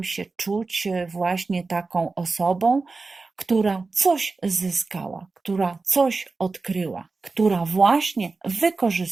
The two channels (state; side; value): quieter; left; 3.9 dB